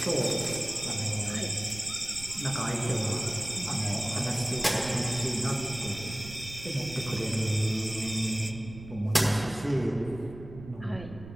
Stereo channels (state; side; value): noise; right; rumble, 14 dB below the sound